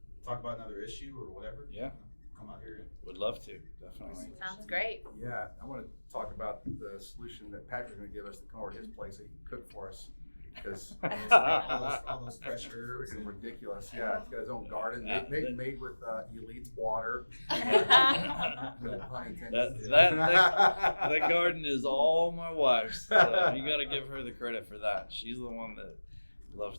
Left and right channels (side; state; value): both; inverted; correlation -1.00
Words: talk about another issue or whatever, come out here. Would love to, definitely. Sounds great. Yeah, I want to talk about the solution that Patrick's going to give us to come over to his place so he can cook for us. Because all those fresh herbs. Freaking ridiculous. Yeah, he's got his own garden made with Elite water. That garden is all my wife's. So you got to give her the credit for that. She's the one that loves